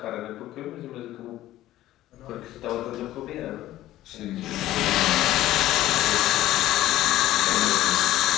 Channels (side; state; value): right; quieter; 14.7 dB